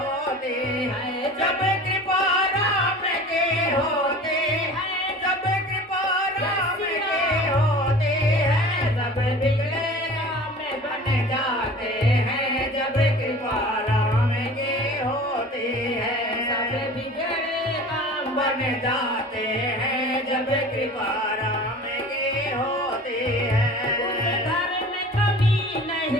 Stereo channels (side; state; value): both; normal; correlation 0.41